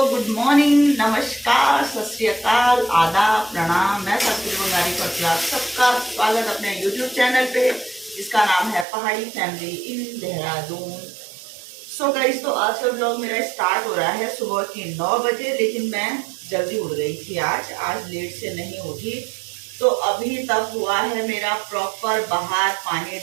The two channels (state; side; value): drops out; left; at 8.8 s